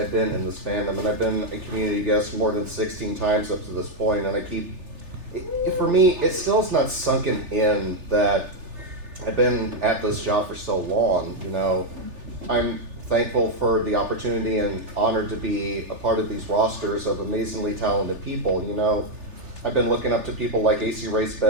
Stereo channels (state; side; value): late; left; 3.4 ms